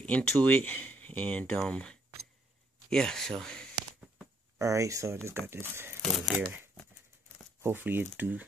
into it, and yeah. So all right. So I just got this thing here. Hopefully it do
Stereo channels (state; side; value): normal; both; correlation 0.69